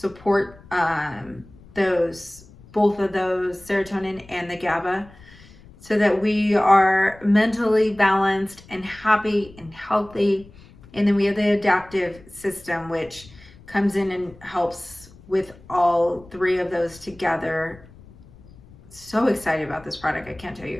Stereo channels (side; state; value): left; noise; rumble, 23 dB below the sound